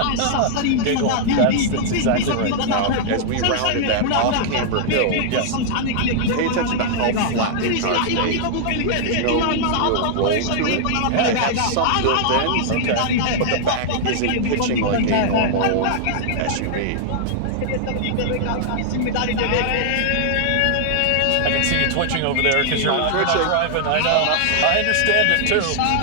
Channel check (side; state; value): both; different; correlation -0.01